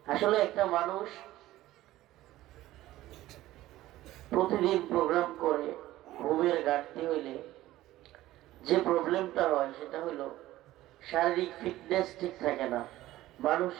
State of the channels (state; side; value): quieter; left; 15.7 dB